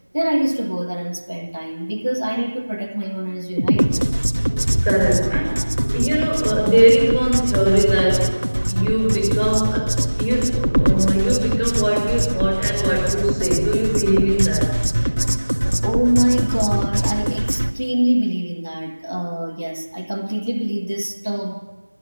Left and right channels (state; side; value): inverted; both; correlation -1.00